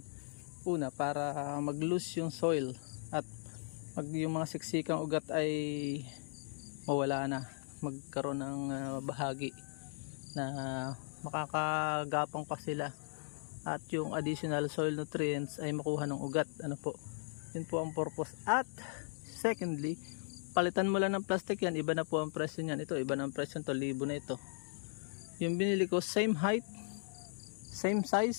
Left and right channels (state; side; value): silent; right; digital silence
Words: una para mag-loose yung soil at yung mga siksikang ugat ay mawala na, magkaroon ng bahagi na makakagapang pa sila at yung additional soil nutrients ay makuha ng ugat. Ano po, yun po ang purpose. At secondly, palitan mo lang ng plastic yan, iba na po ang presyo niyan. Ito, iba na ang presyo nito, libo na ito. Yung binili ko, same height, same